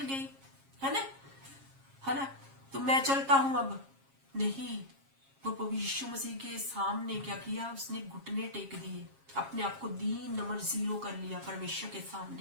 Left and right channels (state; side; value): late; left; 7.4 ms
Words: गई, है ना, तो मैं चलता हूं। अब नहीं, वो प्रभु यीशु मसीह के सामने क्या किया, उसने घुटने टेक दिए, अपने आप को दीन नंबर 0 कर लिया परमेश्वर के